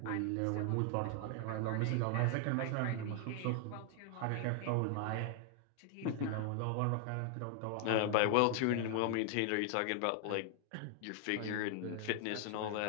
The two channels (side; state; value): both; different; correlation 0.00